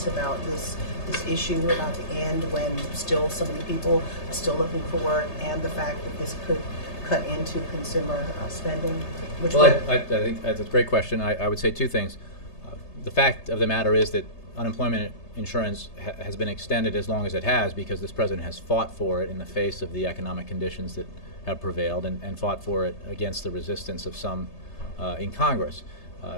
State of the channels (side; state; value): right; late; 3.3 ms